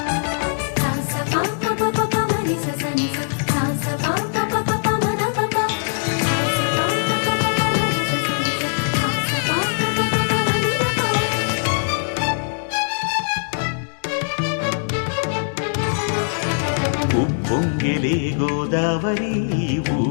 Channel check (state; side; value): silent; right; digital silence